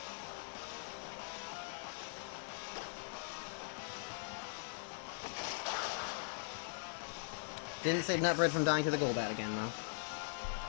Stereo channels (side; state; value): right; silent; digital silence